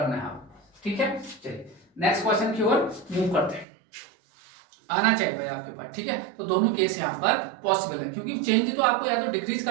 है आपको, ठीक है। चलिए नेक्स्ट क्वेश्चन की ओर मूव करते हैं। आना चाहिए भाई आपके पास, ठीक है। तो दोनों केस यहाँ पर पॉसिबल है, क्योंकि चेंज तो आपको या तो डिक्रीज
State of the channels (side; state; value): left; drops out; at 3.7 s